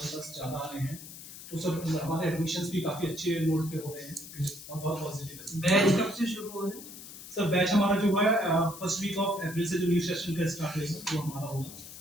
पास ज़्यादा आ रहे हैं। तो सर हमारे एडमिशंस भी काफ़ी अच्छे नोट पे हो रहे हैं और बहुत पॉजिटिव है। बैच कब से शुरू हो रहे हैं? सर बैच हमारा जो है फर्स्ट वीक ऑफ अप्रैल से जो न्यू सेशन का स्टार्ट होगा वो हमारा होगा।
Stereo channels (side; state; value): left; noise; hiss, 14 dB below the sound